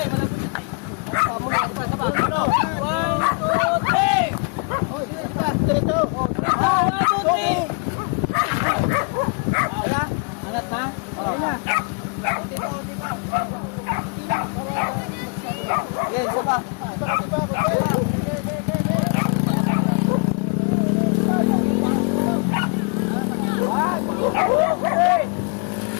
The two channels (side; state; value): right; quieter; 38.7 dB